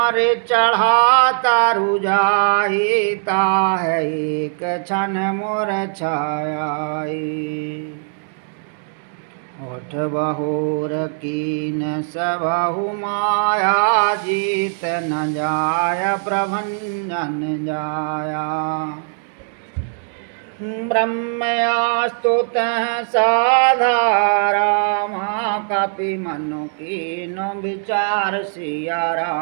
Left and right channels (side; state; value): left; silent; 66 dB below the other